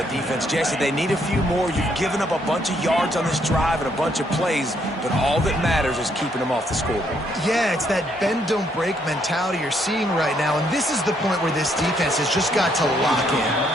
defense. Jesse, they need a few more. You've given up a bunch of yards on this drive and a bunch of plays, but all that matters is keeping them off the scoreboard. Yeah, it's that bend, don't break mentality you're seeing right now, and this is the point where this defense has just got to lock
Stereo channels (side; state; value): both; normal; correlation 0.71